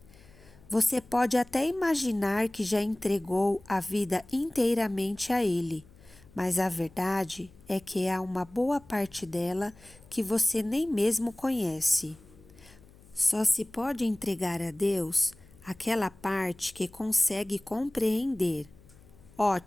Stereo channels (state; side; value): noise; left; hum, 24 dB below the sound